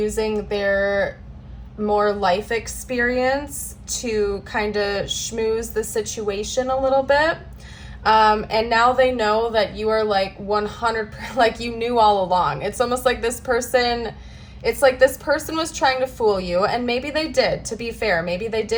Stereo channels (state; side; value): identical; both; correlation 1.00